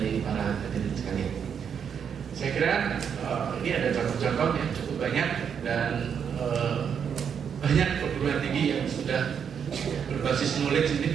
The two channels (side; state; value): left; quieter; 7.5 dB